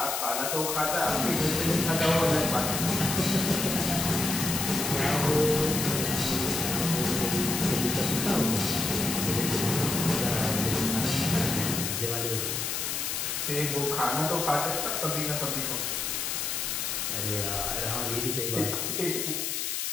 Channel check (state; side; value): noise; left; hiss, 1 dB below the sound